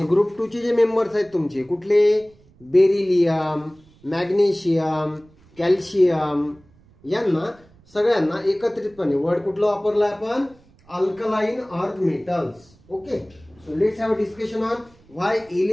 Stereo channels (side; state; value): right; noise; rumble, 29 dB below the sound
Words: ग्रुप 2 चे जे मेंबर्स आहेत तुमचे कुठले, बेरिलियम, मॅग्नेशियम, कॅल्शियम, यांना सगळ्यांना एकत्रितपणे वर्ड कुठलं वापरलं आपण, alkaline earth metals. Okay, so let's have a discussion on why